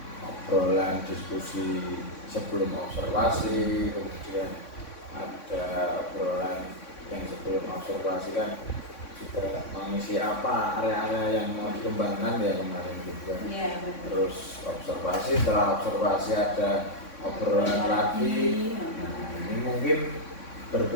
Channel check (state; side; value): late; right; 3.6 ms